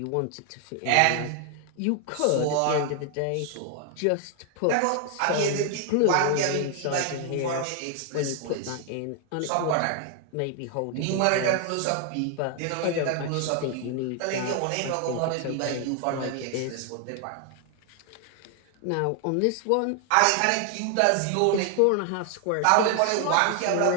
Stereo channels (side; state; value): both; different; correlation 0.00